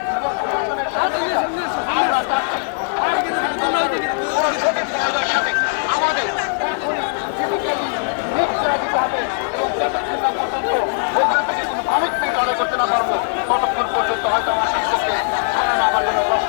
এবং প্রশাসনের সহযোগিতা আমরা চাচ্ছি কোনো সঠিক জায়গার সাথে আমাদের দিতে হবে এবং যতক্ষণ না পর্যন্ত ওখান থেকে কিন্তু মানুষ পেয়ে আদায় করতে না পারবো ততক্ষণ পর্যন্ত হয়তো আমার শিক্ষককে ধরানো আমার জন্য কষ্ট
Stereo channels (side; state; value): right; silent; digital silence